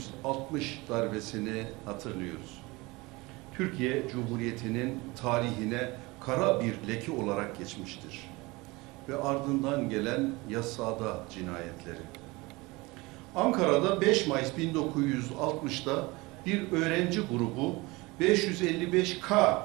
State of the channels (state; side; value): quieter; left; 23.2 dB